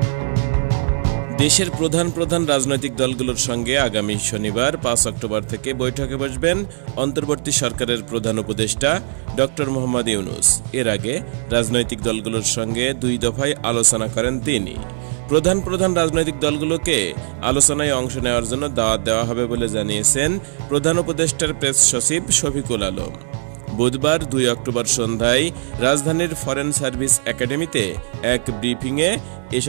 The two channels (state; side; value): silent; left; digital silence